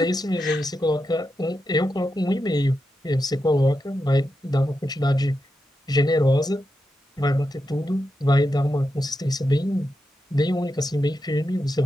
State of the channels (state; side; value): normal; both; correlation 0.87